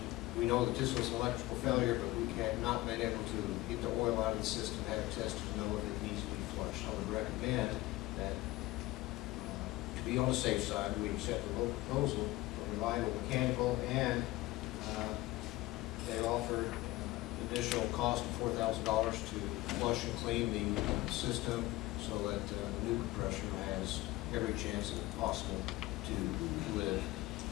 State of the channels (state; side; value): quieter; right; 18.9 dB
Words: We know that this was an electrical failure, but we have not been able to get the oil out of the system, have it tested to know if it needs to be flushed. I would recommend that, to be on the safe side, we accept the low proposal for reliable mechanical, and they offer additional cost of $4,000 to flush and clean the system so that the new compressor has every chance possible to live